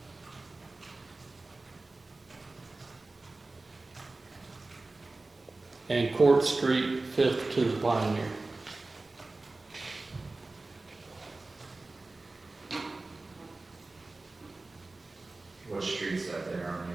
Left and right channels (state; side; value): quieter; left; 3.3 dB